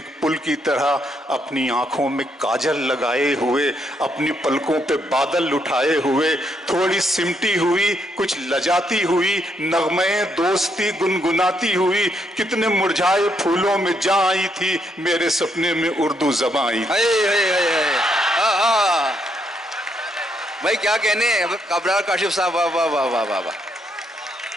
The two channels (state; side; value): normal; both; correlation 0.75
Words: पुल की तरह, अपनी आंखों में काजल लगाए हुए, अपनी पलकों पे बादल उठाए हुए, थोड़ी सिमटी हुई कुछ लजाती हुई, नगमे दोस्ती गुनगुनाती हुई, कितने मुरझाए फूलों में जा आई थी, मेरे सपने में उर्दू ज़बां आई। भाई क्या कहने हैं अबरार काशिफ साहब, वाह वाह वाह वाह वाह वाह,